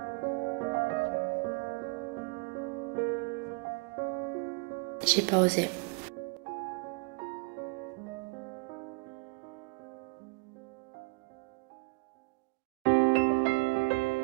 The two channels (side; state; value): left; quieter; 28.0 dB